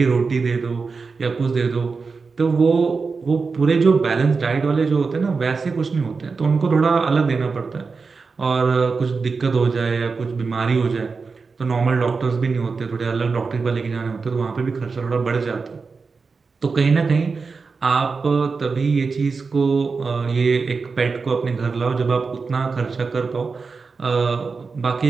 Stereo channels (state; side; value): quieter; left; 4.6 dB